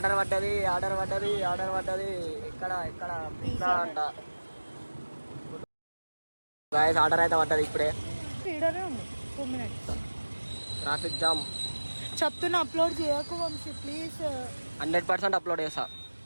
పడ్డది. ఇక్కడ పిజ్జా అంట. గాయస్ ఆర్డర్ అయితే పడ్డది ఇప్పుడే. వీడియోనే ఉంది 2 minutes. Traffic jam. చెప్తున్నా అప్లోడ్ చేయకు వంశీ ప్లీజ్. 100% అప్లోడ్ చేస్తా.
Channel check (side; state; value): both; inverted; correlation -1.00